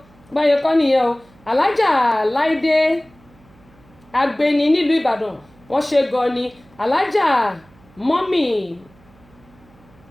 báyẹn kọ́ nìyẹn o alájà láìdé agbeni nílùú ìbàdàn wọ́n ṣe gan ni alájà mọ́mì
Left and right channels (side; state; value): right; noise; hum, 28 dB below the sound